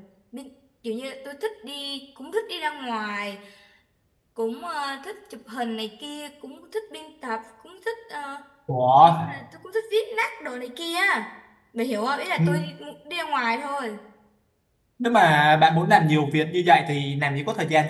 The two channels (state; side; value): identical; both; correlation 1.00